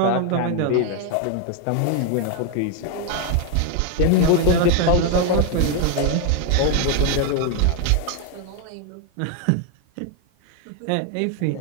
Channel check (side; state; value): both; different; correlation 0.01